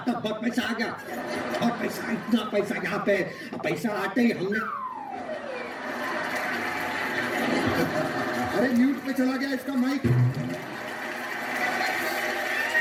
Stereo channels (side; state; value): both; identical; correlation 1.00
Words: बहुत पैसा आ गया। और पैसा, इतना पैसा यहाँ पे। पैसा आते ही हमने अरे म्यूट पे चला गया इसका माइक।